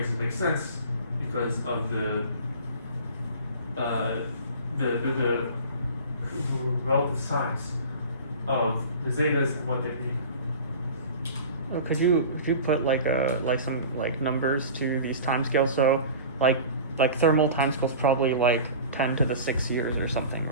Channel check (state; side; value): inverted; both; correlation -0.38